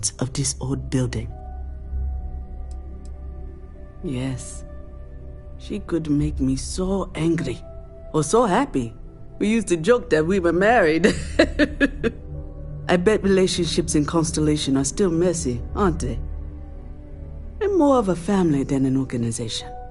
of this old building. Yes, she could make me so angry, or so happy. We used to joke that we were married. I bet relationships in Constellation are still messy, aren't they? They're more of a family than an organization.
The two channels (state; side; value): identical; both; correlation 1.00